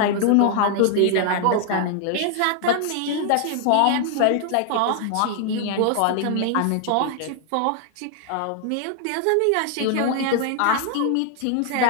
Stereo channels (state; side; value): different; both; correlation 0.00